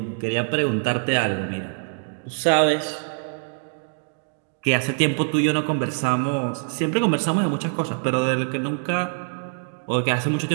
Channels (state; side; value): silent; left; digital silence